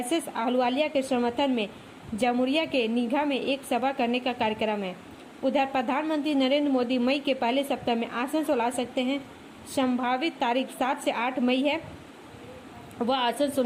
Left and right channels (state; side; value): identical; both; correlation 1.00